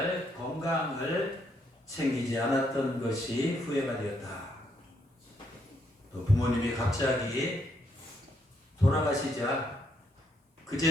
건강을 챙기지 않았던 것이 후회가 되었다. 또 부모님이 갑자기 돌아가시자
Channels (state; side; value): normal; both; correlation 0.74